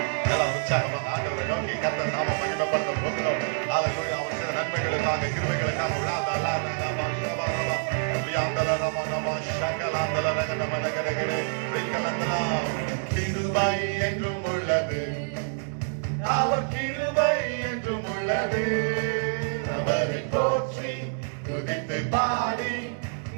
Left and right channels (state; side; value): silent; left; 60 dB below the other